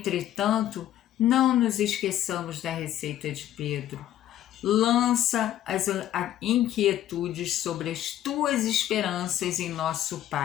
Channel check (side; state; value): right; quieter; 12.3 dB